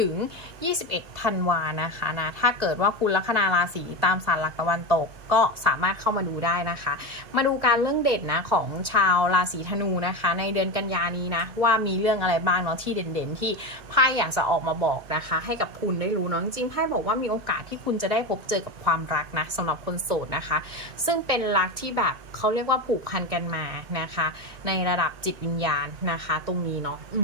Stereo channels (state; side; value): late; left; 2.1 ms